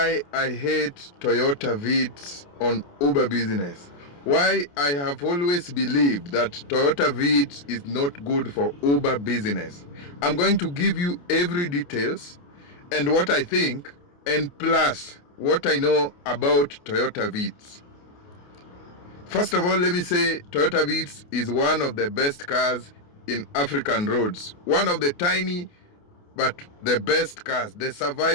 I hate Toyota Vitz on Uber business. Why I have always believed that Toyota Vitz is not good for Uber business. I'm going to give you every details and what I think, and plus what I know about Toyota Vitz. First of all, let me say Toyota Vitz is one of the best cars in African roads. One of the tiny but the best cars, the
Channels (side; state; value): right; late; 28 ms